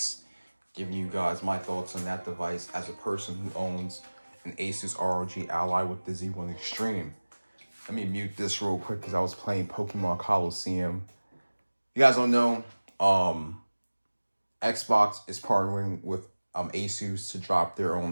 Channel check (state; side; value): inverted; both; correlation -1.00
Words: giving you guys my thoughts on that device as a person who owns an Asus ROG Ally with the Z1 Extreme. Let me mute this real quick because I was playing Pokemon Coliseum. You guys don't know, Xbox is partnering with Asus to drop their